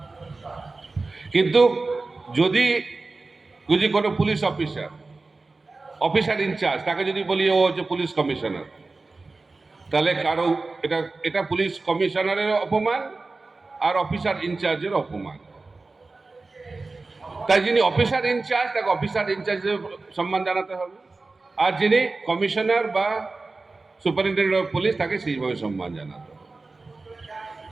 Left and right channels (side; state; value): left; quieter; 3.6 dB